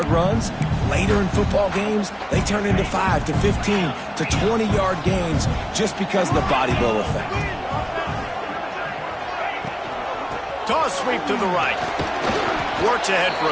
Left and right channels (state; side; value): identical; both; correlation 1.00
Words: runs, later in football games, they turn into 5 to 15 to 20-yard gains just because of the body blow effect. Toss sweep to the right. Works ahead for